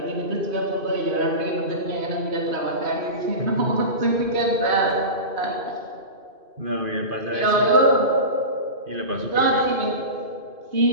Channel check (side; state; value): left; late; 2.5 ms